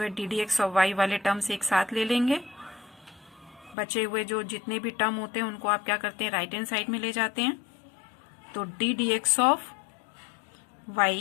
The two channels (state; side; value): drops out; right; at 3.8 s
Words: है d d x of y वाले terms एक साथ ले लेंगे, बचे हुए जो जितने भी टर्म होते हैं उनको आप क्या करते हैं, राइट हैंड साइड में ले जाते हैं, तो d d x of